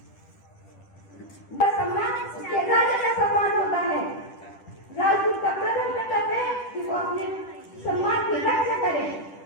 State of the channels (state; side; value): late; right; 10 ms